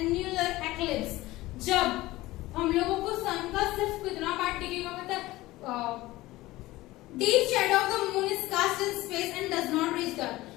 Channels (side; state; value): right; quieter; 18.3 dB